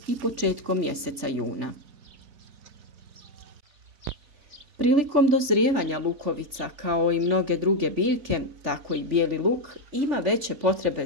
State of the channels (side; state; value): left; late; 3.4 ms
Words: i početkom mjeseca juna. Prilikom dozrijevanja lukovica, kao i mnoge druge biljke, tako i bijeli luk, ima veće potrebe